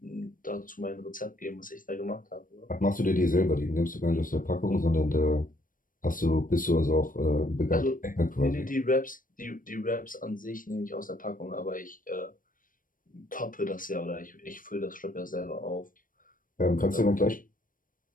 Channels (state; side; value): late; right; 0.40 ms